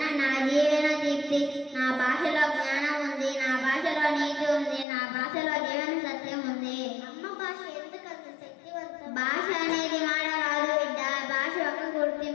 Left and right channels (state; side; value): drops out; right; at 4.9 s